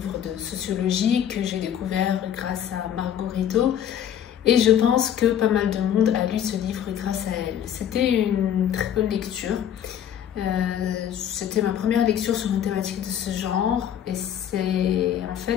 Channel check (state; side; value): quieter; right; 9.8 dB